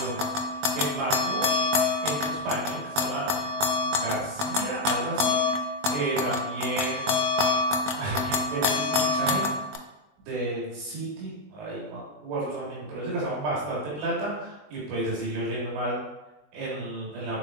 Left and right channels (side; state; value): left; late; 20 ms